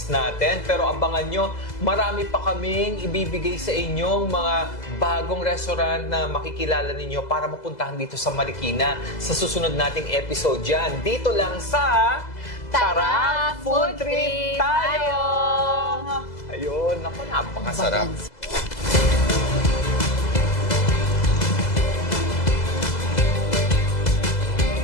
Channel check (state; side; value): late; right; 2.0 ms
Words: natin. Pero abangan nyo, marami pa kaming ibibigay sa inyong mga bagong restaurant na makikilala ninyo para mapuntahan dito sa Marikina sa susunod nating episode dyan. Dito lang sa Tara, Food Trip tayo! Ayun, naku, napakasarap.